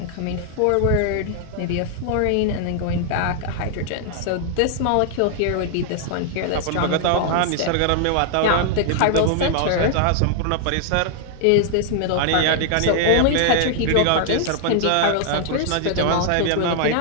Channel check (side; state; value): both; different; correlation 0.00